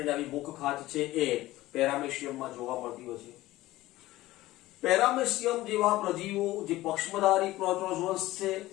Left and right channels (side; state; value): right; quieter; 17.1 dB